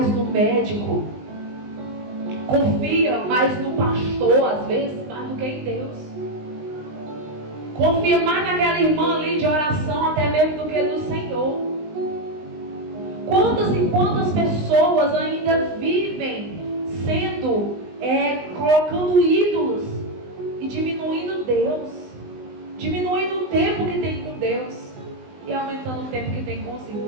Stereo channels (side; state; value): left; late; 19 ms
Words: no médico, confia mais no pastor, às vezes, mais do que em Deus. Confia mais naquela irmã ali de oração, até mesmo do que no Senhor. Quantas e quantas pessoas ainda vivem sendo, colocando ídolos e diminuindo Deus, diminuindo o tempo que tem com Deus e aumentando o tempo que tem com os